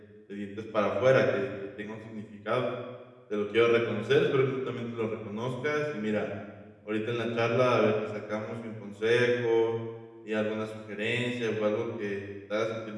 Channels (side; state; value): both; identical; correlation 1.00